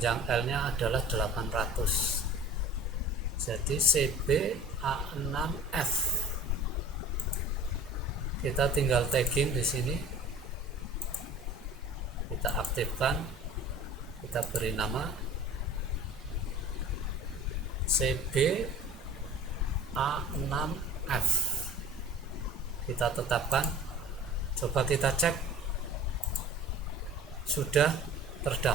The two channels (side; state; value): both; normal; correlation 0.41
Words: L nya adalah 800. Jadi CB A6F. Kita tinggal tagging di sini. Kita aktifkan. Kita beri nama CB A6F. Kita tetapkan. Coba kita cek. Sudah